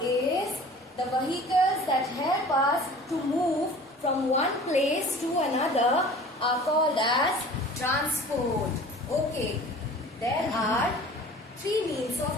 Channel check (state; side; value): normal; both; correlation 0.44